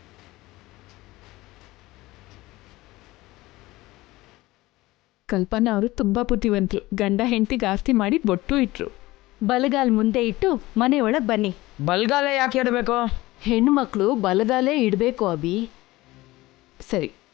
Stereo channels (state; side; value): quieter; right; 18.9 dB